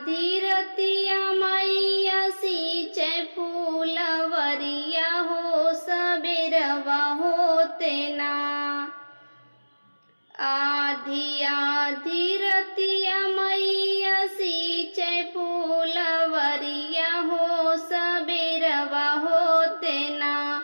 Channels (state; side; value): inverted; both; correlation -1.00